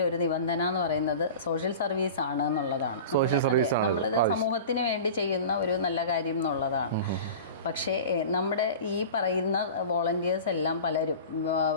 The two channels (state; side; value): inverted; both; correlation -0.36